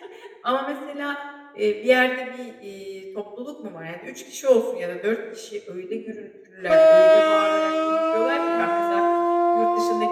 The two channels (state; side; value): identical; both; correlation 1.00